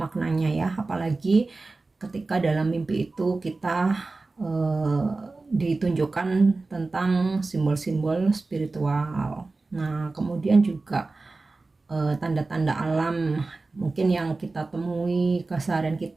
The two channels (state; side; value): quieter; left; 3.5 dB